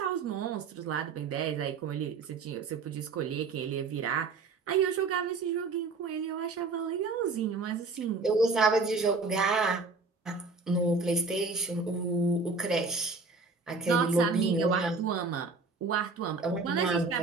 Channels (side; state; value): left; quieter; 4.1 dB